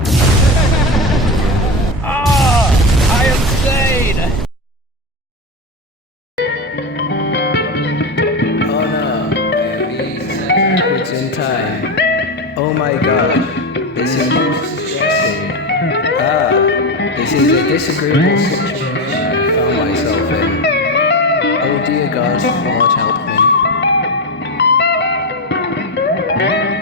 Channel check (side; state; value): both; normal; correlation 0.16